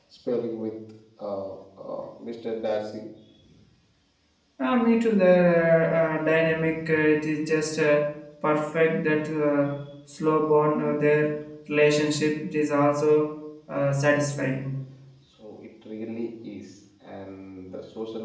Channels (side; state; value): both; identical; correlation 1.00